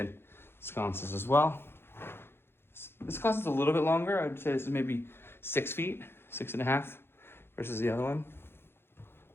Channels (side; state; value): right; late; 0.11 ms